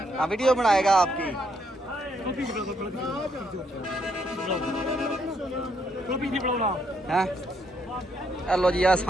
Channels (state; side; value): normal; both; correlation 0.74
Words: हाँ वीडियो बनाएगा आपकी कॉपी नहीं बनाना हैं हेलो जी